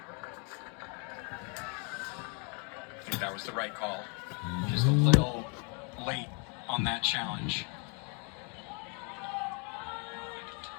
I think that was the right call. Just a little late on that challenge.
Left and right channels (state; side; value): quieter; right; 36.0 dB